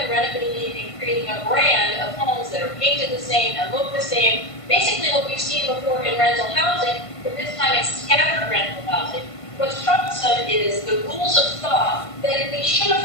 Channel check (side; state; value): right; late; 1.5 ms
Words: renovating, and creating a brand of homes that are painted the same and look the same. Basically what we've seen before in rental housing, but this time it's scattered rental housing. What's troublesome is the rules of thought that we should have